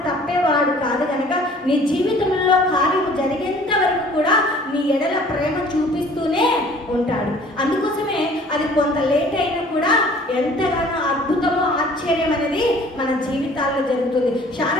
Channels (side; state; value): both; normal; correlation 0.52